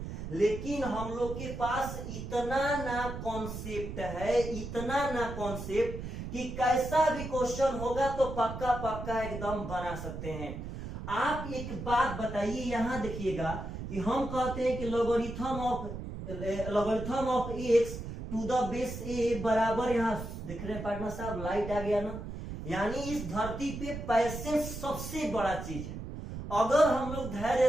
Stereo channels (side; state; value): right; noise; rumble, 8 dB below the sound